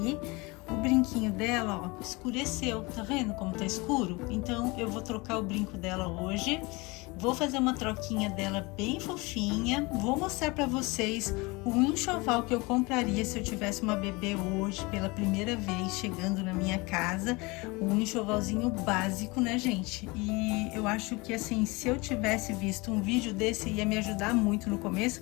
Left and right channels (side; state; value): right; quieter; 25.3 dB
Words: O brinquinho dela, ó, escureceu, tá vendo como tá escuro? Então eu vou trocar o brinco dela hoje, vou fazer uma troquinha dela bem fofinha, vou mostrar pra vocês o enxoval que eu compraria se eu tivesse uma bebê hoje, pela primeira vez chegando na minha casa, um enxovalzinho básico, né, gente? E eu acho que, assim, se eu tivesse visto um vídeo desse, ia me ajudar muito no começo,